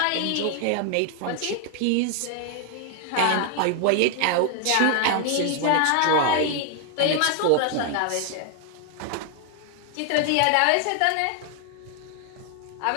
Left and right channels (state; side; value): different; both; correlation 0.00